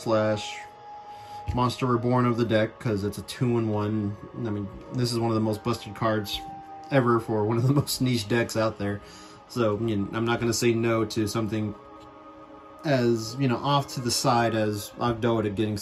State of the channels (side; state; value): both; identical; correlation 1.00